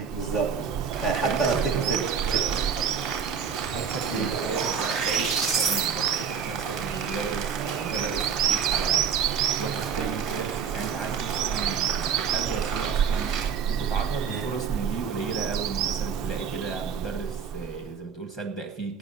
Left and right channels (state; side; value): quieter; left; 6.8 dB